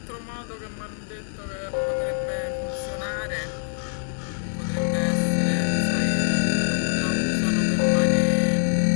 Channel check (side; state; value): right; silent; digital silence